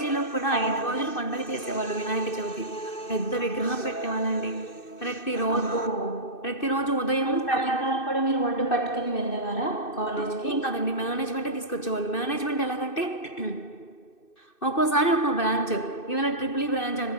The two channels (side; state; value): right; late; 2.6 ms